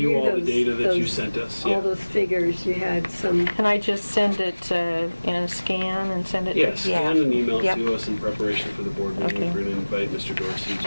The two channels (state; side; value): inverted; both; correlation -1.00